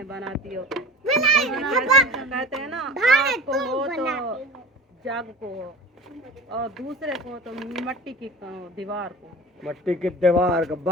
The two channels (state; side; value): normal; both; correlation 0.36